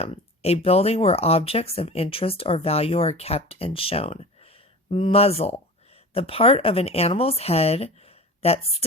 a building where objects of interest or value are kept and shown. Muzzle, the part of an animal's head that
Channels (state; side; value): normal; both; correlation 0.35